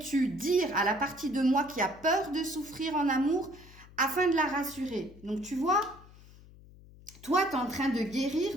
dire à la partie de moi qui a peur de souffrir en amour afin de la rassurer? Donc tu vois, toi, tu es en train de guérir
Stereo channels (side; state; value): left; noise; hum, 21 dB below the sound